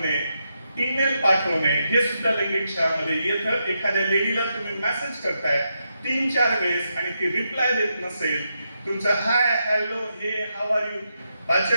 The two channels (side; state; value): both; inverted; correlation -0.84